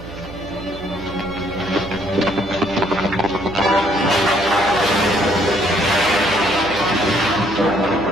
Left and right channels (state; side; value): noise; right; hum, 14 dB below the sound